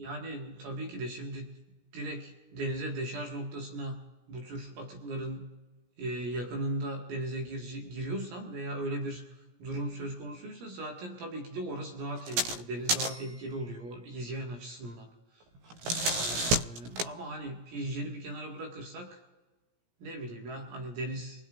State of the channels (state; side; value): late; left; 17 ms